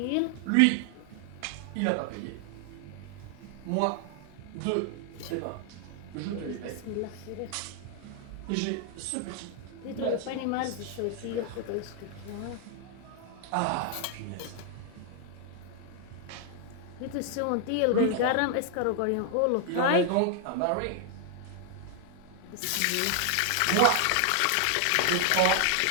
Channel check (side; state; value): both; different; correlation 0.00